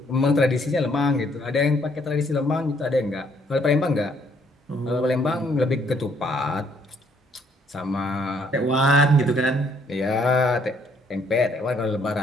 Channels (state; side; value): normal; both; correlation 0.67